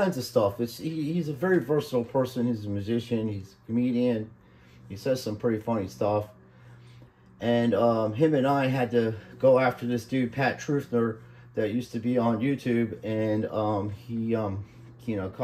of stuff. He's a very versatile person. He's a musician. He's a comedian. He says some pretty funny stuff. And him and I had to go after this dude, Pat Truthner, that used to be on YouTube. And he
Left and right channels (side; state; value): both; identical; correlation 1.00